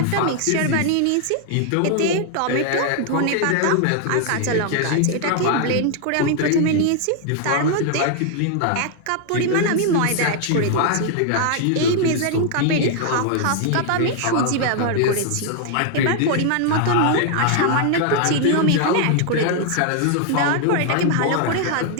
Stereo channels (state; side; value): different; both; correlation 0.00